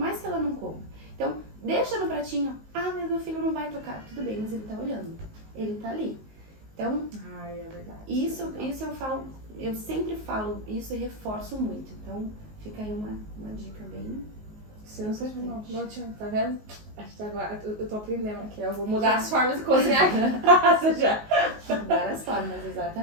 que ela não coma. Então, deixa no pratinho. Mas meu filho não vai tocar. Tudo bem, mas ele tá olhando. Ele tá ali. Então, é verdade. Isso eu falo, eu sempre falo isso e reforço muito. Então, fica aí uma dica bem sensacional. Não tinha, tá vendo? Acho que agora eu tô aprendendo aqui. Eu vou mudar as formas de cozinhar em casa já. Mudar as formas,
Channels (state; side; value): late; left; 19 ms